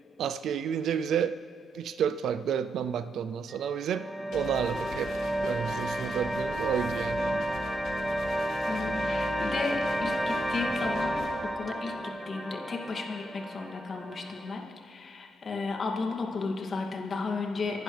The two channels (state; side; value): normal; both; correlation 0.80